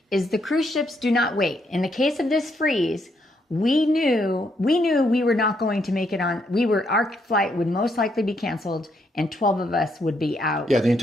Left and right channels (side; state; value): both; normal; correlation 0.75